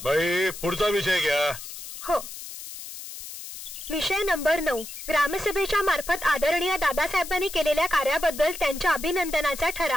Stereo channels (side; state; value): left; noise; hiss, 11 dB below the sound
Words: बाई, पुढचा विषय घ्या. हो. विषय नंबर 9, ग्रामसभेच्या मार्फत आदरणीय दादासाहेबांनी केलेल्या कार्याबद्दल त्यांच्या अभिनंदनाचा